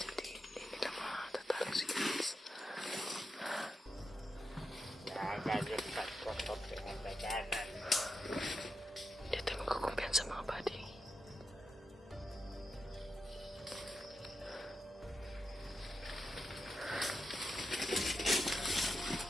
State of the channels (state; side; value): normal; both; correlation 0.87